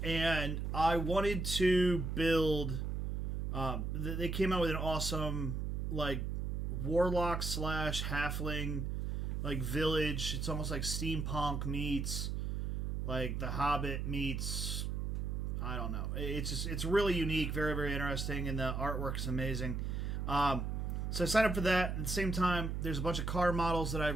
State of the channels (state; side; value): noise; right; hum, 1 dB below the sound